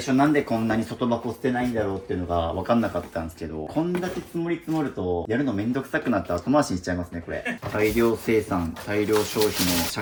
初なんでこんなに外箱捨てないんだろうっていうのが分かんなかったんですけど、こんだけ積もり積もるとやるのめんどくさくなって後回しにしちゃいますね、これ。大量生産、大量消費の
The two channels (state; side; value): identical; both; correlation 1.00